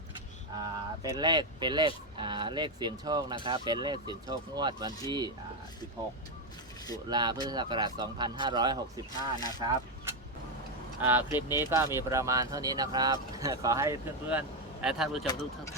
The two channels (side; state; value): both; normal; correlation 0.06